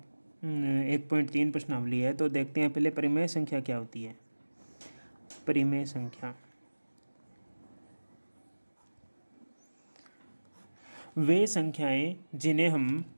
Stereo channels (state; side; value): inverted; both; correlation -1.00